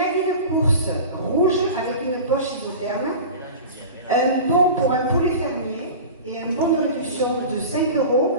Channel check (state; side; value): inverted; both; correlation -0.34